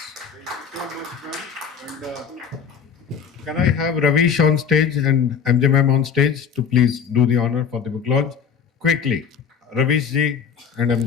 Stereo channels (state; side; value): quieter; right; 7.1 dB